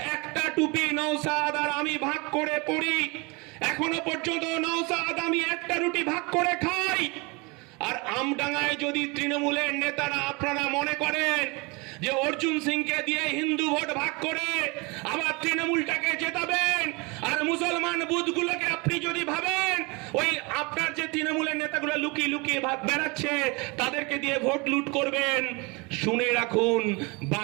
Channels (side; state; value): left; quieter; 27.8 dB